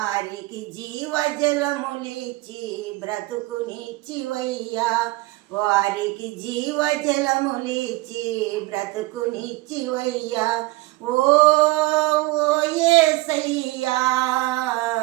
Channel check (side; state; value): left; quieter; 20.8 dB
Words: జీవజలములిచ్చి బ్రతుకునిచ్చివయ్యా, వారికి జీవజలములిచ్చి బ్రతుకునిచ్చివయ్యా. ఓ యేసయ్యా